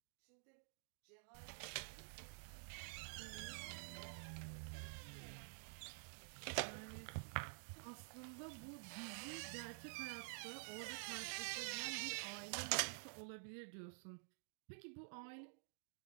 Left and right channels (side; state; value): left; silent; digital silence